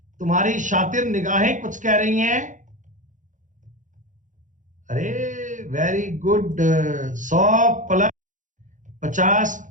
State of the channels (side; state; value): left; late; 0.37 ms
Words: तुम्हारी शातिर निगाहें कुछ कह रही हैं। अरे वेरी गुड, 100 प्लस 50